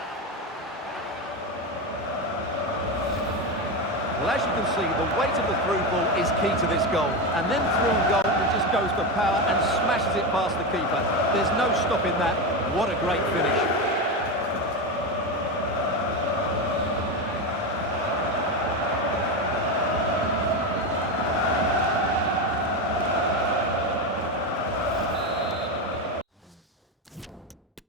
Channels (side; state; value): both; normal; correlation 0.15